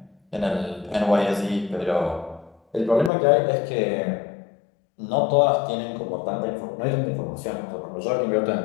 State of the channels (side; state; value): right; drops out; at 3.1 s